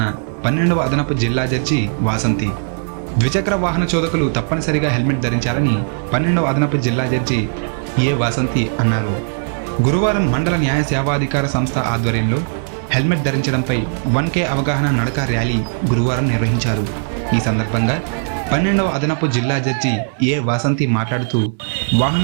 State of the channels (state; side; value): silent; left; digital silence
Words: 12వ అదనపు జిల్లా జడ్జి వాసంతి. ద్విచక్ర వాహన చోదకులు తప్పనిసరిగా హెల్మెట్ ధరించాలని 12వ అదనపు జిల్లా జడ్జి ఏ వాసంతి అన్నారు. గురువారం మండల న్యాయ సేవాధికార సంస్థ ఆధ్వర్యంలో హెల్మెట్ ధరించడంపై 1K అవగాహన నడక ర్యాలీ గురువారం నిర్వహించారు. ఈ సందర్భంగా 12వ అదనపు జిల్లా జడ్జి ఏ వాసంతి మాట్లాడుతూ